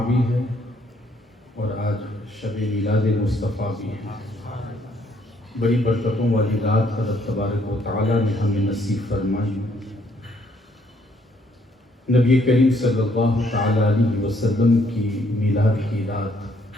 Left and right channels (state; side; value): normal; both; correlation 0.68